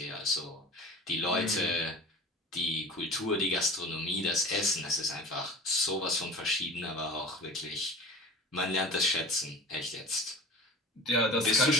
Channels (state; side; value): normal; both; correlation 0.38